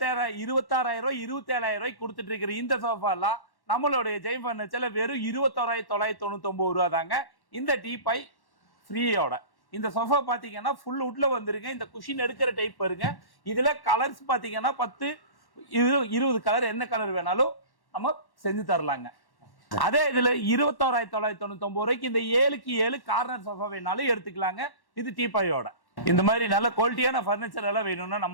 27,000 ரூபாய்க்கு கொடுத்துட்டு இருக்கிற இந்த சோஃபா எல்லாம் நம்மளுடைய ஜெயம் பர்னிச்சர்ல வெறும் 21,999 ரூபா தாங்க. இந்த டீபாய் ஃப்ரீயோட இந்த சோஃபா பாத்தீங்கன்னா ஃபுல் வுட்ல வந்துருங்க. இந்த குஷின் எடுக்கிற டைப் பாருங்க. இதுல கலர்ஸ் பாத்தீங்கன்னா 10-20 கலர் என்ன கலர் வேணாலும் நம்ம செஞ்சு தரலாங்க. அதே இதுல 21,999 ரூபாய்க்கு இந்த 7க்கு 7 கார்னர் சோஃபா வேணாலும் எடுத்துக்கலாங்க. இது டீபாயோட. இந்த மாதிரி நல்ல குவாலிட்டியான பர்னிச்சர் எல்லாம் வேணும்னா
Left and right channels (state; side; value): late; right; 1.1 ms